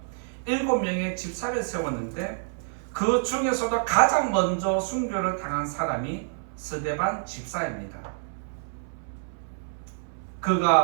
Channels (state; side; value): silent; left; 60 dB below the other